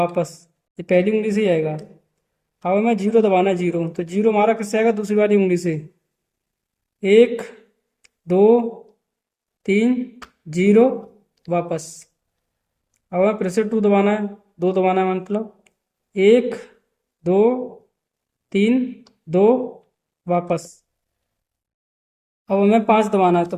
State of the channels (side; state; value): both; identical; correlation 1.00